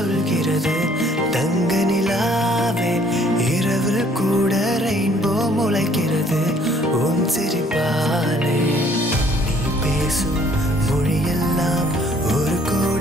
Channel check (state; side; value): normal; both; correlation 0.60